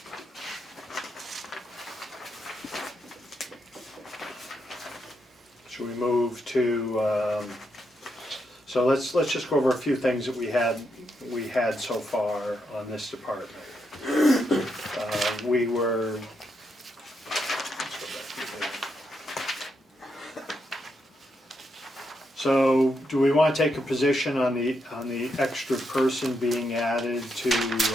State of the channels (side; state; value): both; normal; correlation 0.81